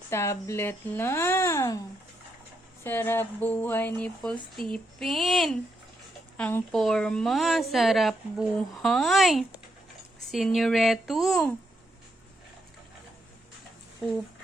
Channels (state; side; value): normal; both; correlation 0.80